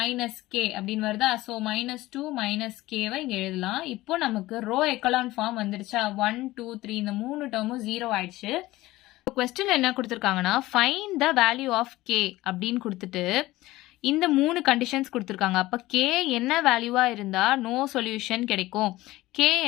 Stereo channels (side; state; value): right; quieter; 17.8 dB